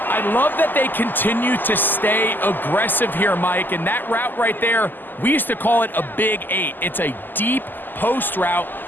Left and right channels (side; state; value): right; late; 0.089 ms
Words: I love that they continue to stay aggressive here, Mike, and that route right there, we used to call it a big 8. It's a deep post route,